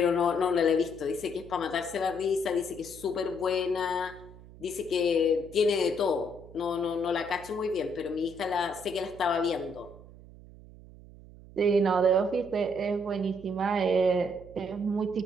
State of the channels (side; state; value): right; noise; hum, 19 dB below the sound